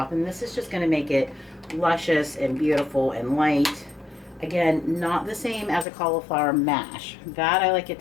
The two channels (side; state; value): right; drops out; at 5.9 s